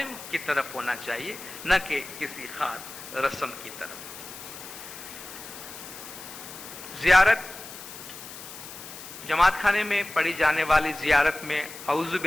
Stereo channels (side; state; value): left; noise; hiss, 13 dB below the sound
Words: کی طرف ہونا چاہیے, نہ کہ کسی خاص رسم کی طرف. زیارت, جماعت خانے میں پڑھی جانے والی زیارت میں اعوذ